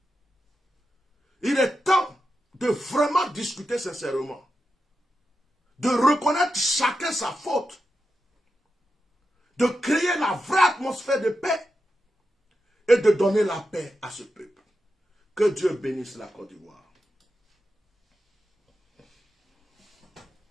il est temps de vraiment discuter sincèrement, de reconnaître chacun sa faute, de créer la vraie atmosphère de paix et de donner la paix à ce peuple. Que Dieu bénisse la Côte d'Ivoire.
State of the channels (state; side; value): normal; both; correlation 0.89